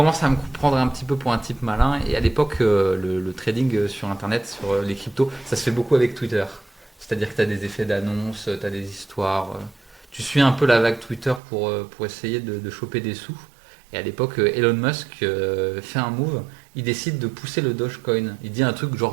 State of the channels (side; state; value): left; drops out; at 11.4 s